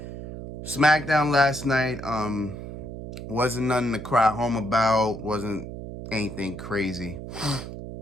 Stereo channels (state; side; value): noise; right; hum, 10 dB below the sound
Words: SmackDown last night wasn't nothing to cry home about. Wasn't anything crazy.